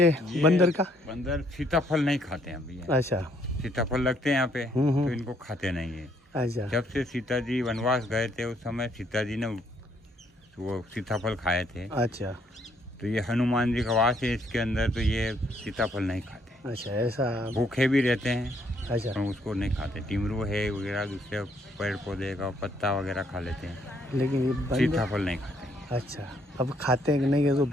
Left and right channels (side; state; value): both; normal; correlation 0.69